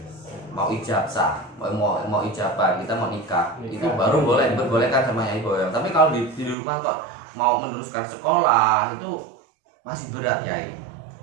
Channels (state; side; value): drops out; left; at 6.6 s